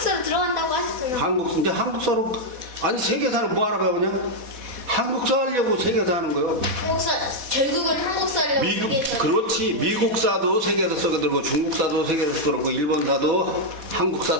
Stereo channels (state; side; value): late; left; 4.1 ms